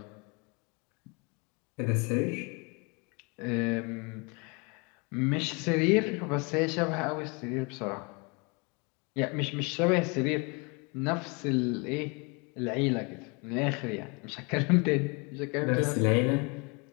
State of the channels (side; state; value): right; quieter; 30.5 dB